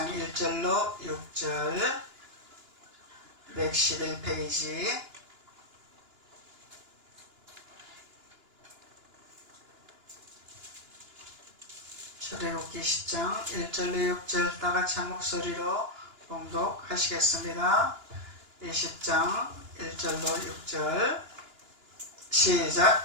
1절로 6절 111페이지. 출애굽기 20장 1절로 6절 다같이 한 목소리로 봉독하시겠습니다. 20장 1절로 6절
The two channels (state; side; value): late; left; 2.9 ms